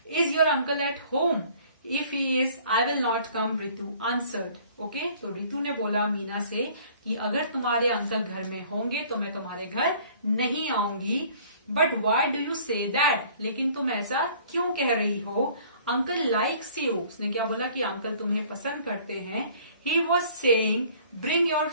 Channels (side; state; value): both; inverted; correlation -0.54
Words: Is your uncle at home? If he is I will not come, Ritu answered. Okay, तो रितु ने बोला मीना से कि अगर तुम्हारे अंकल घर में होंगे तो मैं तुम्हारे घर नहीं आऊंगी। But why do you say that, लेकिन तुम ऐसा क्यों कह रही हो? अंकल लाइक्स यू, उसने क्या बोला कि अंकल तुम्हें पसंद करते हैं। He was saying bring your